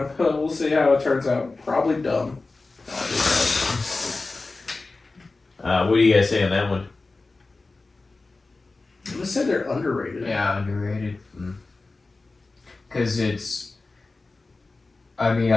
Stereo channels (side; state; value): right; quieter; 3.5 dB